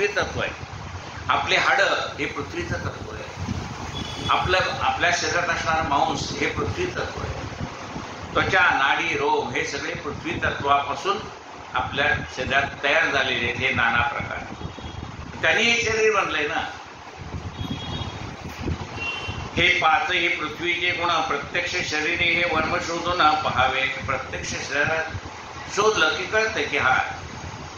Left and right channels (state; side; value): identical; both; correlation 1.00